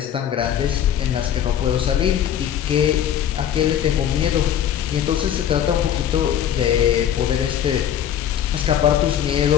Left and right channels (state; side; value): quieter; right; 9.9 dB